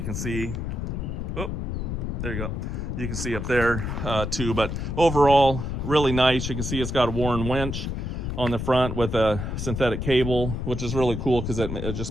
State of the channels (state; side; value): noise; left; rumble, 3 dB below the sound